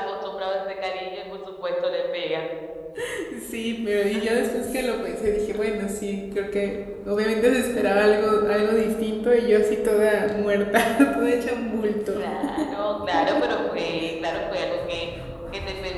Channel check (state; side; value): identical; both; correlation 1.00